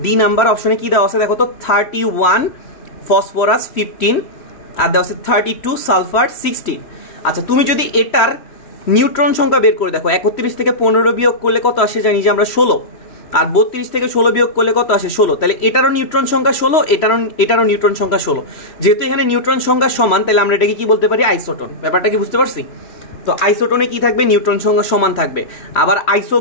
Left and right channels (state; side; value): late; right; 3.1 ms